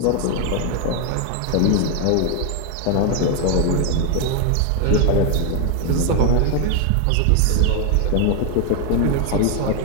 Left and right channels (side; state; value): both; different; correlation 0.01